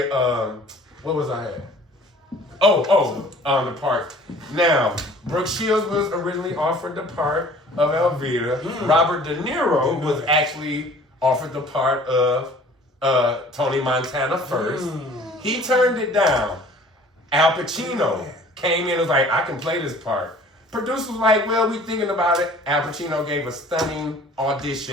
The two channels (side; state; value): both; normal; correlation 0.50